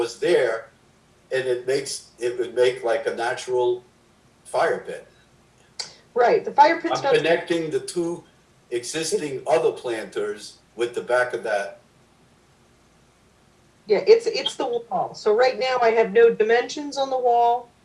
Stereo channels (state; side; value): identical; both; correlation 1.00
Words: there, and it would make like a natural fire pit. Right, the fire pit's I'm connecting the two existing other planters with the back of that. Yeah, it's the wall. So right now I have no dimensions on the wall.